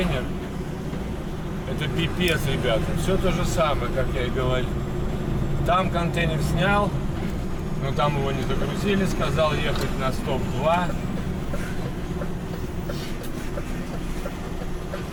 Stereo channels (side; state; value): both; identical; correlation 1.00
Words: Это пипец, ребята. Все то же самое, как я и говорил. Там контейнер снял, но там его не загрузили. Сказал ехать на стоп-2.